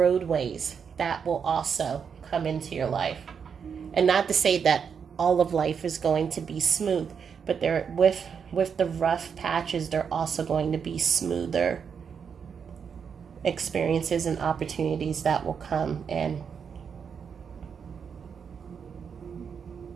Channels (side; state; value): left; quieter; 6.7 dB